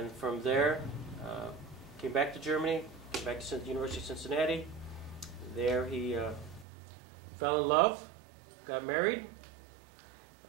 from there, came back to Germany, came back to the University of Cincinnati. There he fell in love, got married,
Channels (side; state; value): left; drops out; at 6.7 s